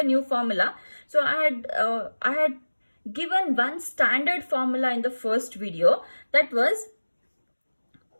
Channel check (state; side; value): inverted; both; correlation -1.00